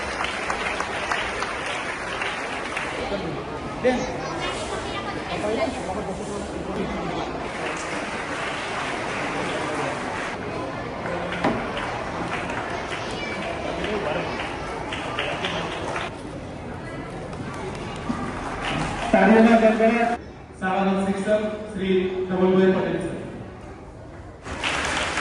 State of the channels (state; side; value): identical; both; correlation 1.00